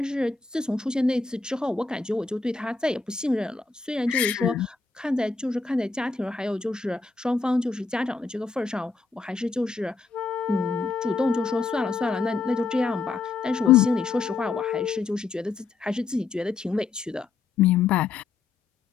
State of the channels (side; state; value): right; quieter; 4.4 dB